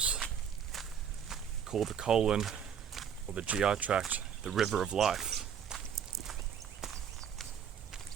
call the colon or the GI tract the river of life.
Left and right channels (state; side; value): quieter; left; 8.0 dB